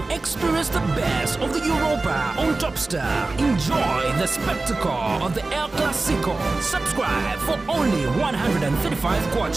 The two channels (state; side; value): quieter; left; 3.4 dB